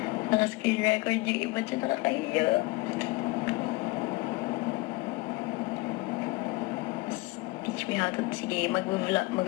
Naka-screen record yung iba dyan, nakakahiya. Teach me how to... Sige,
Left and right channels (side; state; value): right; quieter; 22.5 dB